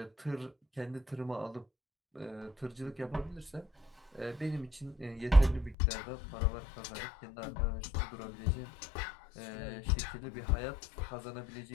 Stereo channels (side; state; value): right; drops out; at 5.8 s